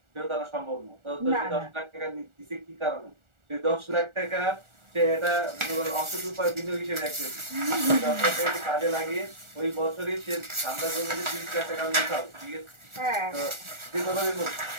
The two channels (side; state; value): left; late; 1.4 ms